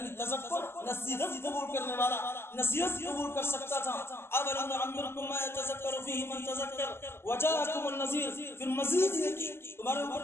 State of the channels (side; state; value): right; late; 0.12 ms